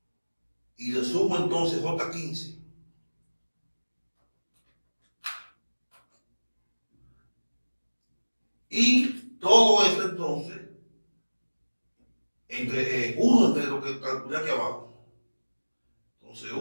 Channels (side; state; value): both; inverted; correlation -1.00